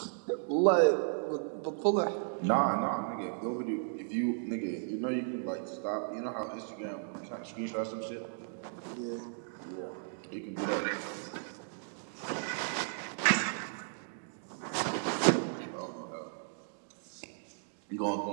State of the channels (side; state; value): left; silent; digital silence